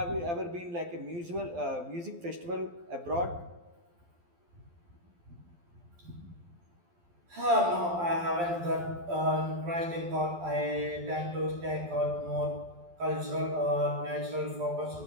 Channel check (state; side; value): late; left; 12 ms